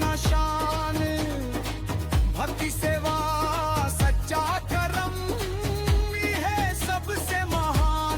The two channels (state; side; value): identical; both; correlation 1.00